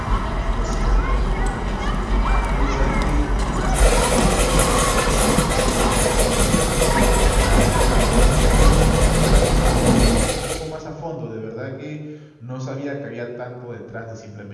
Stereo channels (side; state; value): both; identical; correlation 1.00